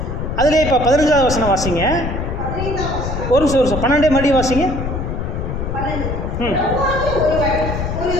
அதிலே இப்போ 15வது வசனம் வாசிங்க. ஒரு நிமிஷம் 12 மறுபடியும் வாசிங்க.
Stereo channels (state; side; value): noise; left; rumble, 4 dB below the sound